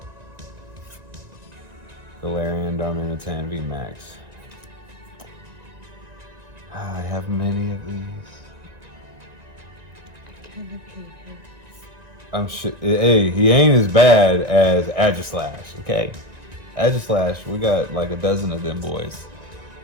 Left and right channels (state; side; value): late; left; 1.9 ms